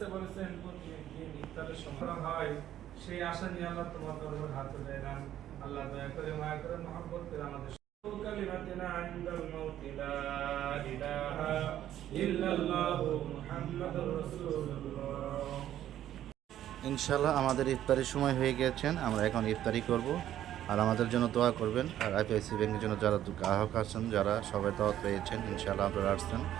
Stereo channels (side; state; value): left; quieter; 11.9 dB